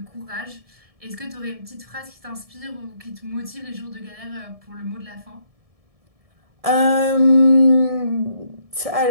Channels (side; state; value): left; late; 1.7 ms